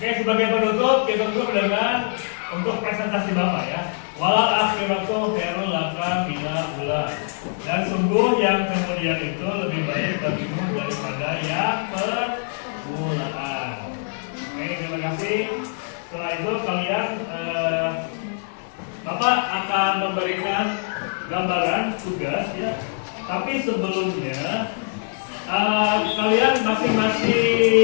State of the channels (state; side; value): silent; right; digital silence